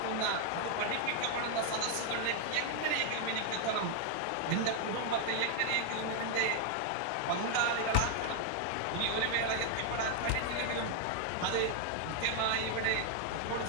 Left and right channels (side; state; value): both; different; correlation 0.00